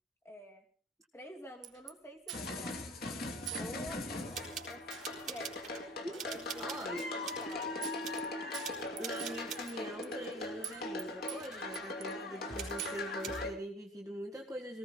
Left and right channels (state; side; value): normal; both; correlation 0.42